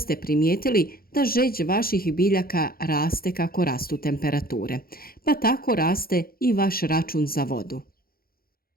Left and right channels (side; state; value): right; late; 0.43 ms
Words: primijetili da žeđ vaših biljaka raste kako rastu temperature, pa tako raste i vaš račun za vodu.